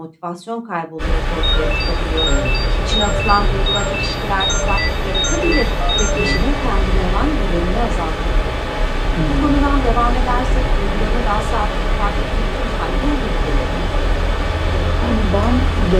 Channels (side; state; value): both; identical; correlation 1.00